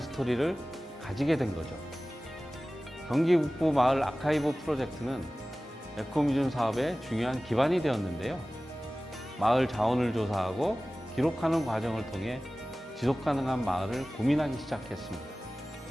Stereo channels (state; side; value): normal; both; correlation 0.97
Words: 가지게 된 거죠. 경기 북부 마을 아카이브 프로젝트는 에코뮤즘 사업의 중요한 기반이 되었는데요. 마을 자원을 조사하고 기록하는 과정을 통해 지속가능한 마을을 고민하기 시작했습니다.